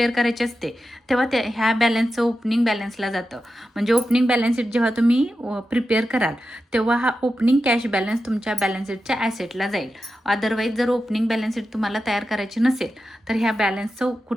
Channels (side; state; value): both; normal; correlation 0.91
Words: करायची असते तेव्हा ह्या बॅलन्सचं ओपनिंग बॅलन्सला जातं. म्हणजे ओपनिंग बॅलन्स शीट जेव्हा तुम्ही प्रिपेअर कराल तेव्हा हा ओपनिंग कॅश बॅलन्स तुमच्या बॅलन्स शीटच्या ॲसेटला जाईल. अदरवाईज जर ओपनिंग बॅलन्स शीट तुम्हाला तयार करायची नसेल तर ह्या बॅलन्सचं